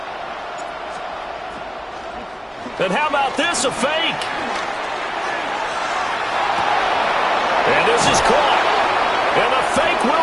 And how about this, a fake? And this is caught. And the fake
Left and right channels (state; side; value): identical; both; correlation 1.00